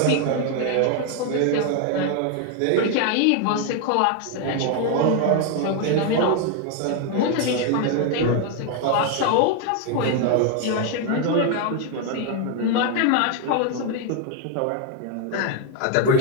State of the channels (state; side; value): different; both; correlation 0.01